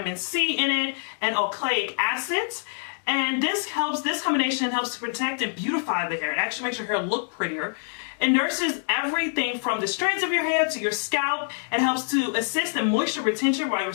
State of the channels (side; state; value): right; silent; digital silence